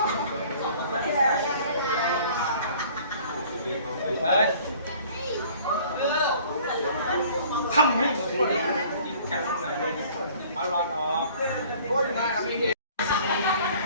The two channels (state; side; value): inverted; both; correlation -0.51